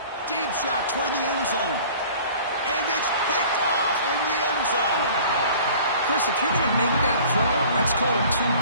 Deep shot toward the end zone. And it's picked off in the end zone. Chris, if you're going to make that throw, that's called a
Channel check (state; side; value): inverted; both; correlation -0.47